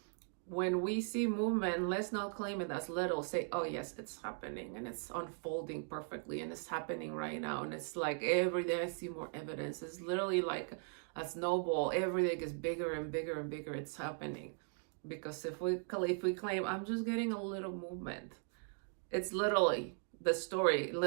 When we see movement, let's not claim it as little. Say, oh yes, it's happening, and it's unfolding perfectly, and it's happening right now. And it's like every day I see more evidence. It's literally like a snowball. Every day gets bigger and bigger and bigger. It's happening. Because if we claim, I'm just getting a little movement, it's literally the story.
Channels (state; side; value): silent; left; 52 dB below the other